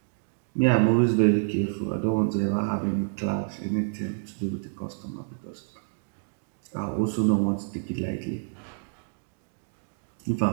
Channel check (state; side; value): silent; left; digital silence